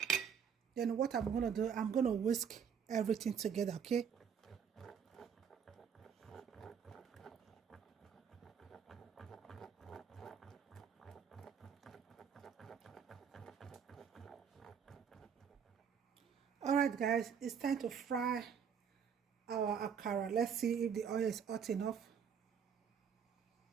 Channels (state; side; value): quieter; left; 7.3 dB